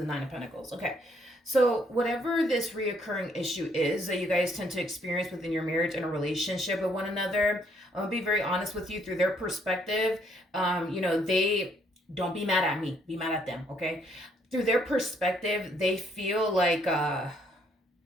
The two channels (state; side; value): normal; both; correlation 0.68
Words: Nine of Pentacles. Okay, so whatever this reoccurring issue is that you guys tend to experience within your marriage and a relationship with one another, I'm gonna be very honest with you, through their perspective, you know, they don't be mad at me, be mad at them, okay? Through their perspective, they feel like